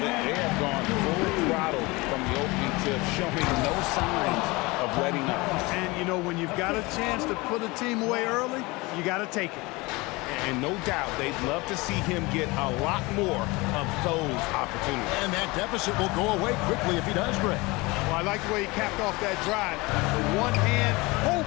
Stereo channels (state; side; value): quieter; right; 23.7 dB